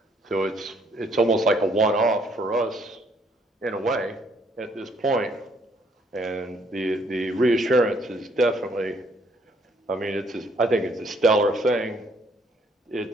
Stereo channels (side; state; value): both; normal; correlation 0.66